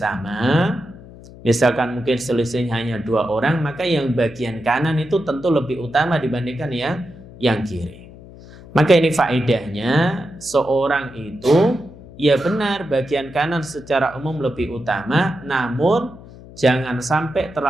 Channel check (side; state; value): left; noise; hum, 19 dB below the sound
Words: misalkan mungkin selisihnya hanya 2 orang, maka yang bagian kanan itu tentu lebih utama dibandingkan yang kiri. Maka ini faedahnya, seorang itu ya benar bagian kanan secara umum lebih utama, namun jangan sampai